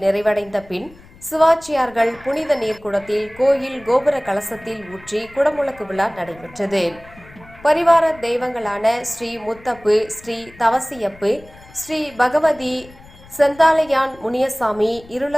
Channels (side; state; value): left; noise; rumble, 23 dB below the sound